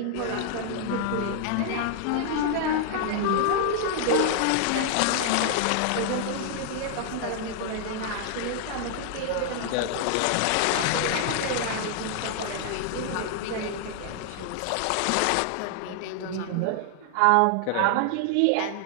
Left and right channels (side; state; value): both; different; correlation 0.00